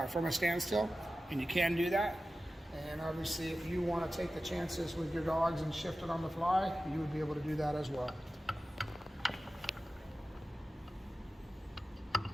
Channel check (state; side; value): normal; both; correlation 0.94